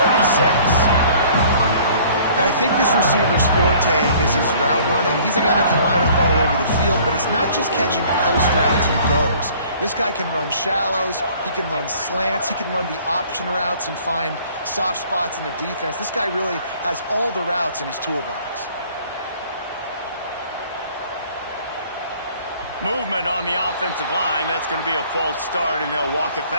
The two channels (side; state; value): both; inverted; correlation -0.54